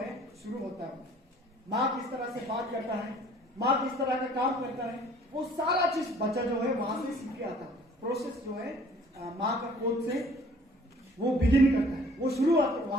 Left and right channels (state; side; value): normal; both; correlation 0.54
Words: शुरू होता है। माँ किस तरह से बात करता है, माँ किस तरह का काम करता है, वो सारा चीज बच्चा जो है वहां से सीख के आता है। प्रोसेस जो है माँ का कोद से वो बिगिन करता है, वो शुरुआत